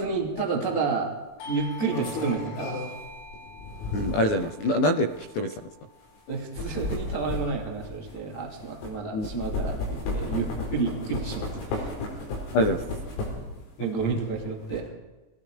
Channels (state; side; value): late; right; 19 ms